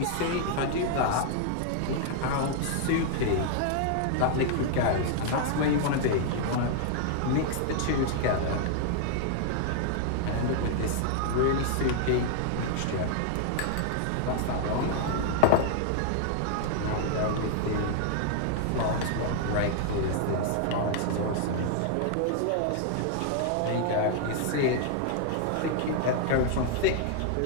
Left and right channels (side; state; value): both; different; correlation 0.00